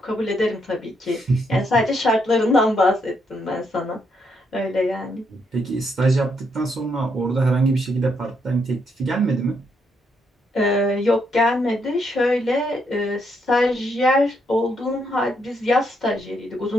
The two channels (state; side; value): normal; both; correlation 0.76